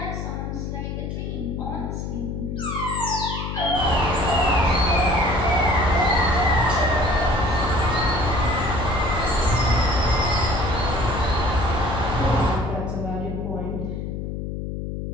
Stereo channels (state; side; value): noise; left; hum, 5 dB below the sound